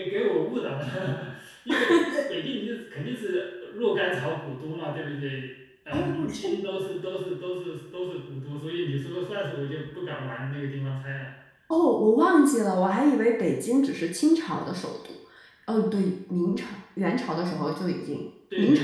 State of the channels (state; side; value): identical; both; correlation 1.00